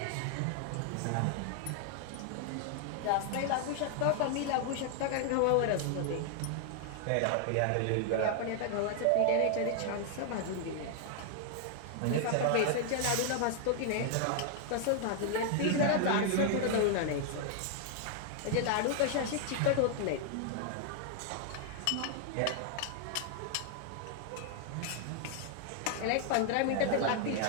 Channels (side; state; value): both; different; correlation 0.00